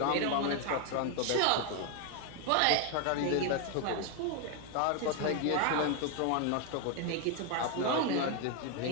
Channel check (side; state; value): both; different; correlation 0.01